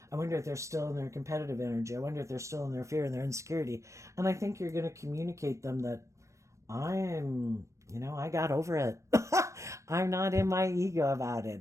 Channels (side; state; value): left; late; 0.15 ms